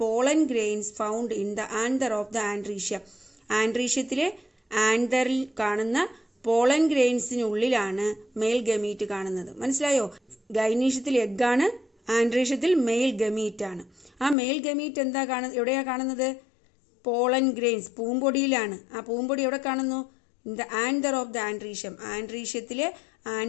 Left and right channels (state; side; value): drops out; right; at 14.4 s